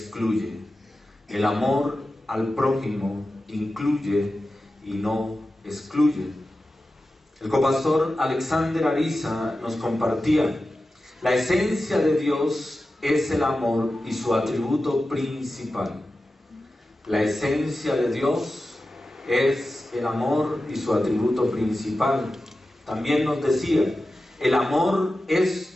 El amor al prójimo incluye y no excluye. El copastor Alexander Ariza nos compartía: la esencia de Dios es el amor y su atributo principal. La esencia de Dios es el amor y su atributo principal. También nos decía: el amor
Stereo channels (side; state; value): both; normal; correlation 0.93